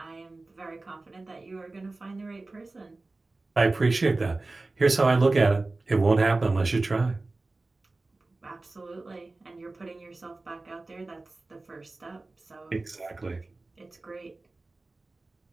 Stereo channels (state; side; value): quieter; left; 3.3 dB